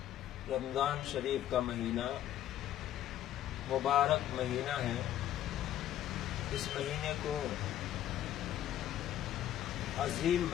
رمضان شریف کا مہینہ مبارک مہینہ ہے۔ اس مہینے کو عظیم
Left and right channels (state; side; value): quieter; right; 12.1 dB